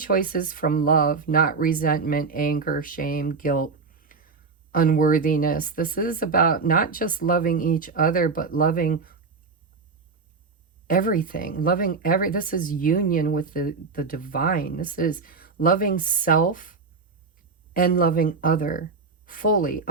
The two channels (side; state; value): left; quieter; 4.5 dB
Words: from love, not resentment, anger, shame, guilt, unworthiness. This is about not just loving each other, but loving everything, this is union with the divine. This is loving self and loving other fully,